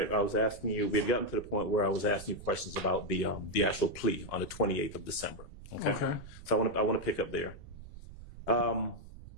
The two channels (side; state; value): right; noise; rumble, 17 dB below the sound